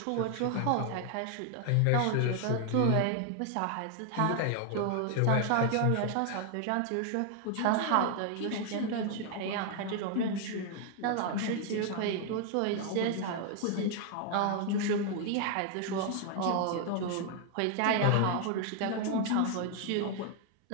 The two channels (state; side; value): different; both; correlation 0.00